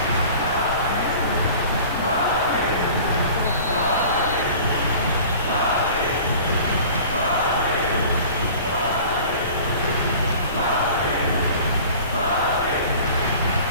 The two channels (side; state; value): both; inverted; correlation -0.43